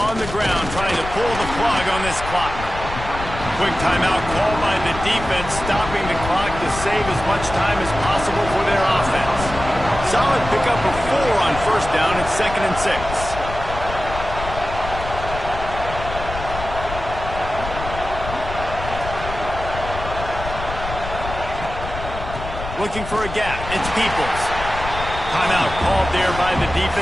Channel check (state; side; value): noise; left; rumble, 9 dB below the sound